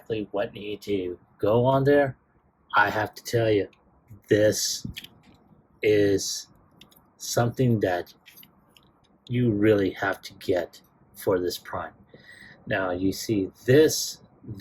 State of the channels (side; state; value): both; identical; correlation 1.00